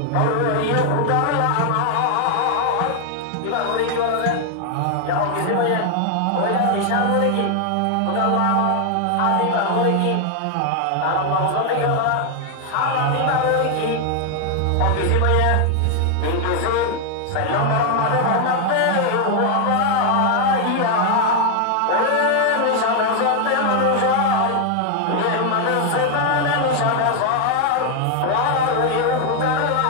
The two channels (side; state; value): both; different; correlation 0.00